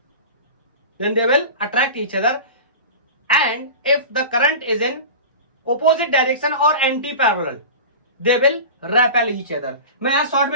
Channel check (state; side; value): inverted; both; correlation -0.32